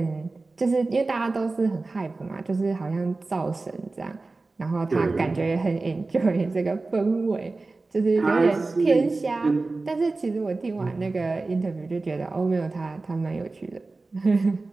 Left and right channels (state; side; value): quieter; left; 3.5 dB